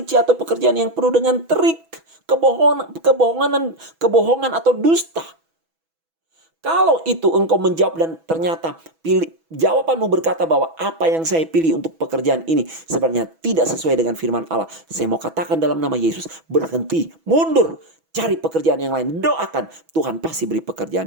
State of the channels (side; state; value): left; late; 6.1 ms